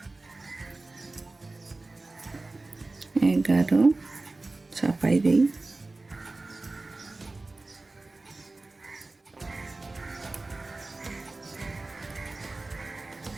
এগারো চাপাই দেই।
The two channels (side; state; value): left; quieter; 3.3 dB